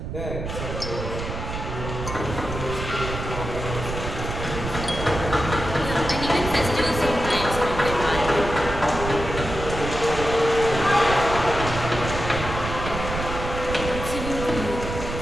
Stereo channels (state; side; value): noise; right; rumble, 6 dB below the sound